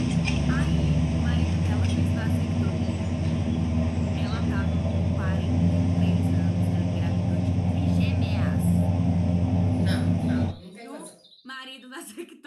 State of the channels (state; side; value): identical; both; correlation 1.00